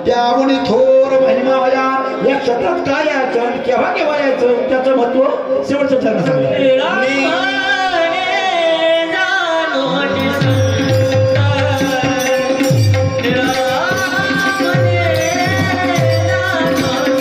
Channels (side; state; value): both; identical; correlation 1.00